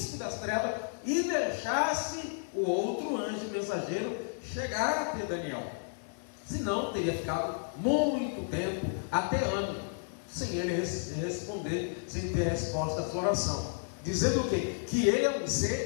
das trevas e deixasse o outro anjo mensageiro chegar até Daniel. Senão teria ficado muito tempo, até ano, sem ele responder, sem ter resposta à sua oração. Dizendo o quê? Que ele é um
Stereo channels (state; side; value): silent; right; 56 dB below the other